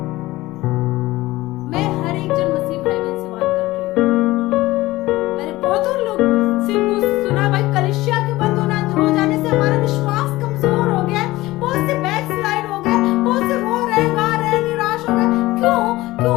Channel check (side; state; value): right; quieter; 18.4 dB